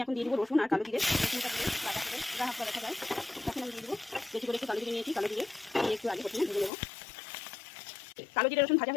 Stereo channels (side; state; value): right; drops out; at 6.7 s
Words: এখন দিয়ে দেবো রসুন আর কালো জিরে। রসুনটা দিয়ে বাটা করে হাফ দেখা যায়। এখন আমি দিয়ে দেবো বেশি করে একটু কালো জিরে নিয়েছি, কালো জিরে দিয়ে একটু আগে প্রথমে ভেজে নেবো। কালো জিরে রসুন ভাজা